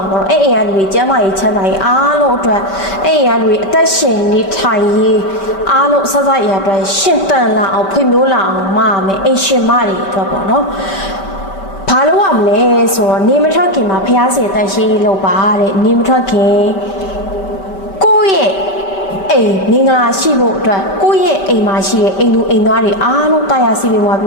ာပေါ့အဲ့အိမ်ကလူတွေကျမ်းမာရေးချမ်းသာရေးအားလုံးအတွက်အဲ့အိမ်ကလူတွေအသက်ရှင်နေထိုင်ရေးအားလုံးဆက်ဆက်ရအတွက်ရှင်တန်လာအောင်ဖွံ့ဖြိုးလာအောင်မမယ်အိမ်ရှင်မတွေအတွက်ပေါ့နော်ဘာလို့ရမလဲဆိုတော့နေမထွက်ခင်မှာဖျားစီတန်ရှင်းလို့ပါတဲ့နေမထွက်ခင်ကိုယ့်ရဲ့အိမ်မင်္ဂလာရှိဖို့အတွက်ကိုယ့်ရဲ့အိမ်မှာရှိတဲ့အိမ်လူအိမ်သားတွေအားလုံးတရားစီပြီးွားပြ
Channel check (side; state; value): right; late; 5.2 ms